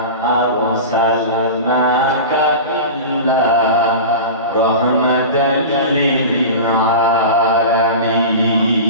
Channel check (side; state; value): both; inverted; correlation -0.30